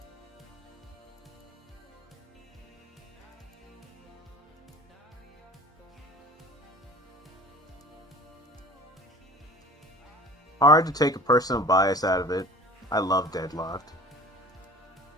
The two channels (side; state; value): both; normal; correlation 0.42